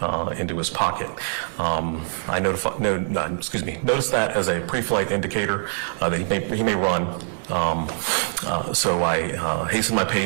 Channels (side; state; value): left; silent; 63 dB below the other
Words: into his pocket. I noticed that as a pre-flight indicator that he may run. So I hastened my